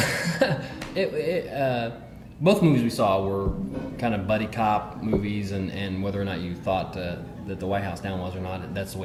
Both movies we saw were kind of buddy cop movies, and whether or not you thought that the White House Down was or not, that's the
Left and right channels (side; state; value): both; identical; correlation 1.00